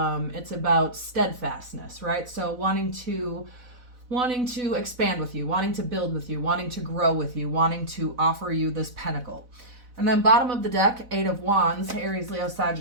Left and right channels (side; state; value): left; late; 4.0 ms